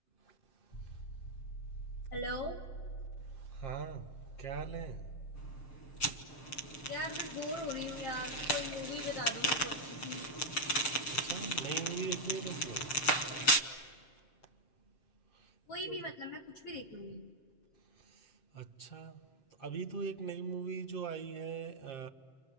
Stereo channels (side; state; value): right; late; 6.7 ms